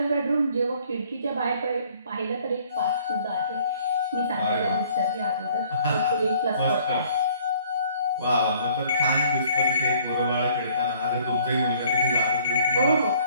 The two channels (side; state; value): both; inverted; correlation -0.58